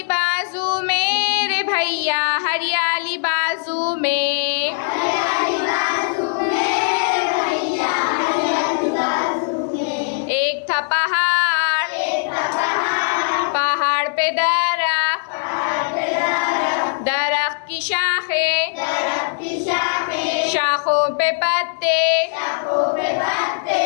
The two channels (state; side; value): silent; right; digital silence